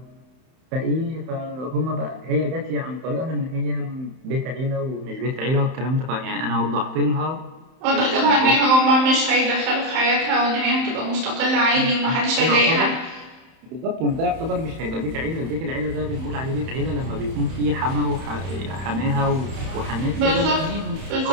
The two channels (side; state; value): left; late; 31 ms